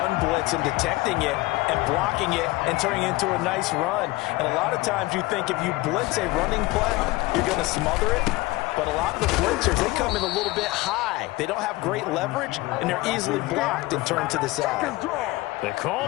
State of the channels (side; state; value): right; quieter; 20.6 dB